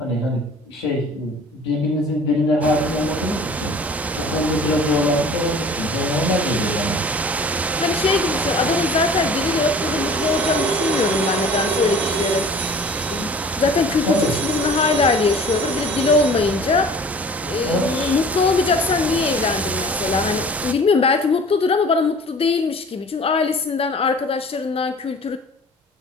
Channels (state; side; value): normal; both; correlation 0.45